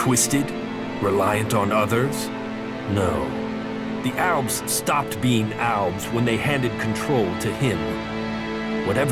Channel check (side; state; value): both; identical; correlation 1.00